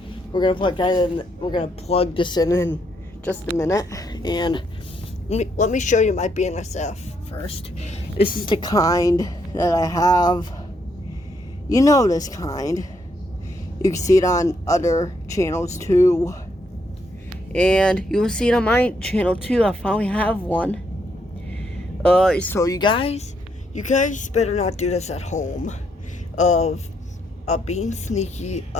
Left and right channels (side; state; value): both; normal; correlation 0.75